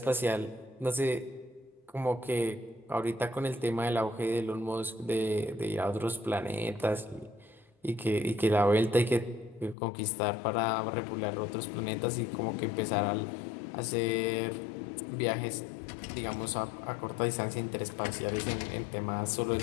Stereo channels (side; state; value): right; drops out; at 9.8 s